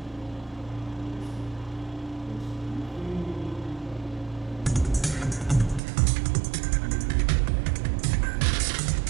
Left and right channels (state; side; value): drops out; left; at 5.8 s